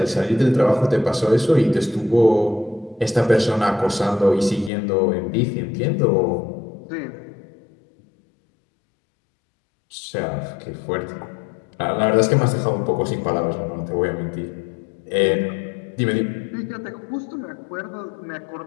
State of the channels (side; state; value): right; drops out; at 4.7 s